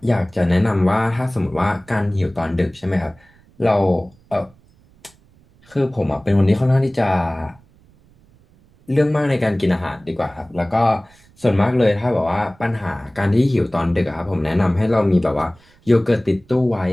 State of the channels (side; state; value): right; noise; rumble, 30 dB below the sound